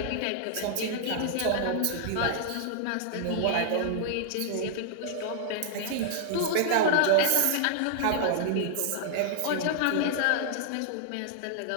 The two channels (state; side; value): different; both; correlation -0.01